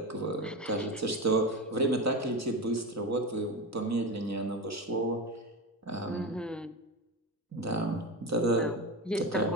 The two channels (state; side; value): normal; both; correlation 0.21